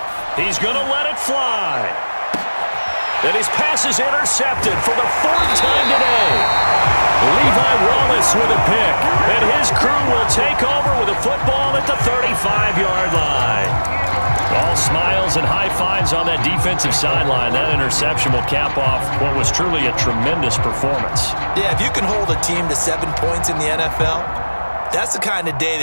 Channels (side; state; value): both; inverted; correlation -1.00